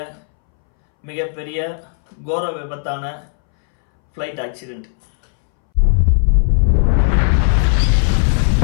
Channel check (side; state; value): right; silent; 65 dB below the other